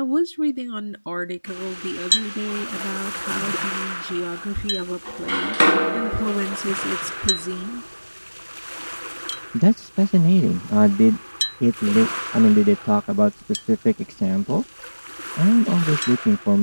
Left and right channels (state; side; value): inverted; both; correlation -1.00